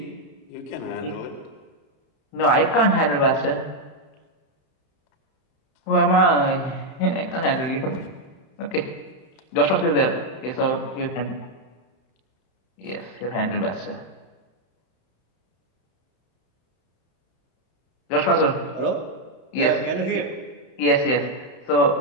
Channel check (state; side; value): late; right; 31 ms